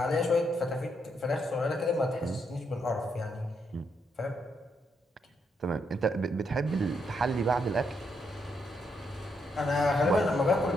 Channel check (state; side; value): normal; both; correlation 0.78